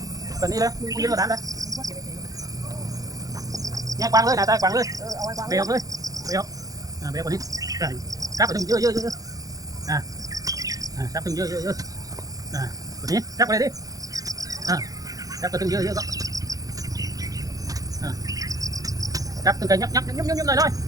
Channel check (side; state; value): left; late; 0.17 ms